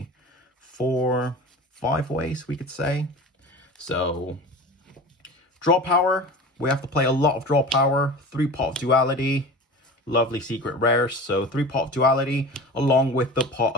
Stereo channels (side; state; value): both; normal; correlation 0.34